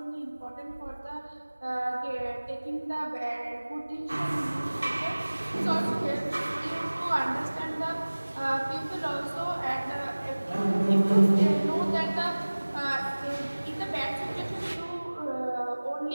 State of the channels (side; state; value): both; inverted; correlation -1.00